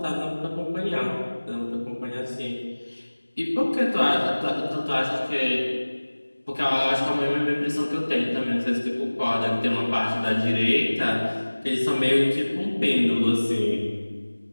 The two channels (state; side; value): inverted; both; correlation -1.00